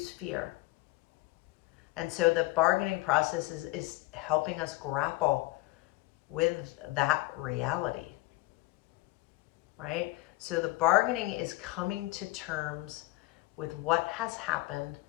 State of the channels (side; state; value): right; quieter; 20.7 dB